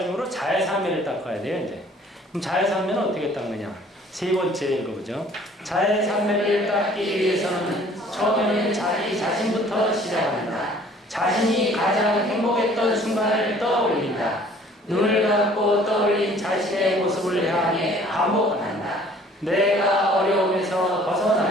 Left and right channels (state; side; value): normal; both; correlation 0.54